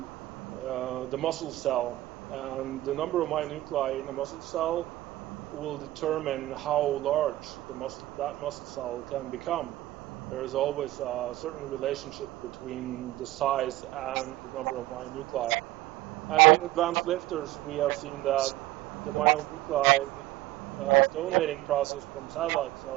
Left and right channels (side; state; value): left; quieter; 16.6 dB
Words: the muscle cell, and the number of myonuclei in a muscle cell will determine how large that muscle cell can become. There is always a certain relationship between the size and the number of myonuclei. And in advanced lifters, we have seen that the myonuclei donating process from satellite